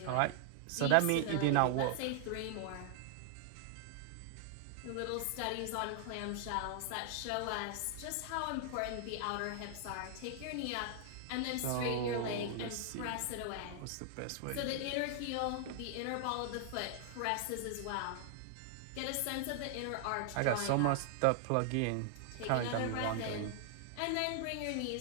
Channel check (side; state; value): both; different; correlation 0.00